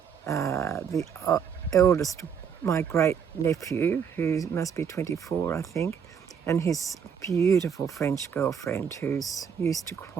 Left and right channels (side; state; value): left; quieter; 7.3 dB